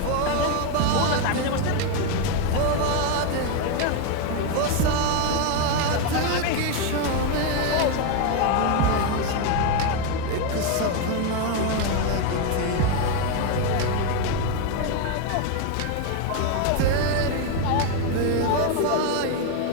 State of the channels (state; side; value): different; both; correlation 0.02